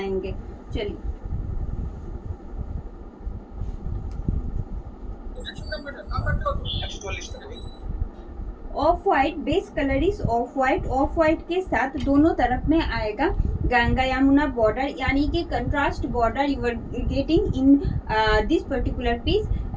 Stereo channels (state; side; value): identical; both; correlation 1.00